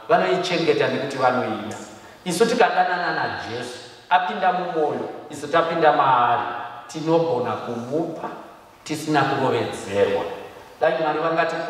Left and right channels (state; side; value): identical; both; correlation 1.00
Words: vanoichengeta nekuti vanoida. Isu tikadanana naJesu apinda mumwoyo, isu tapinda maari, tinogona kumupa tisina kurovedzerwa. Dai Mwari